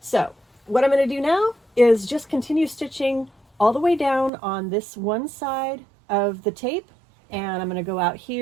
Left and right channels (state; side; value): drops out; left; at 4.3 s